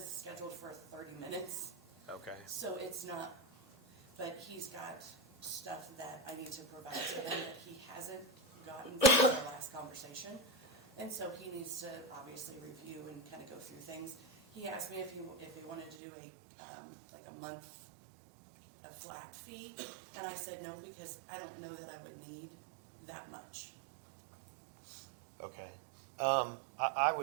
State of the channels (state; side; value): drops out; left; at 16.0 s